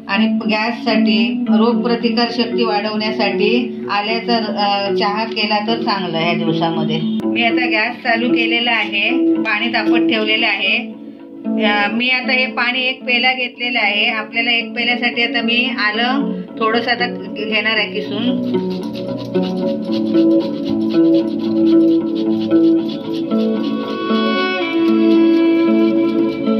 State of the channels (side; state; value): both; identical; correlation 1.00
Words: आणि गॅससाठी, रोगप्रतिकार शक्ती वाढवण्यासाठी आल्याचा चहा केला तर चांगलं या दिवसामध्ये। मी आता गॅस चालू केलेला आहे, पाणी तापत ठेवलेलं आहे। मी आता हे पाणी 1 पेला घेतलेलं आहे। आपल्याला 1 पेल्यासाठी आता मी आलं थोडंसं आता घेणार आहे किसून।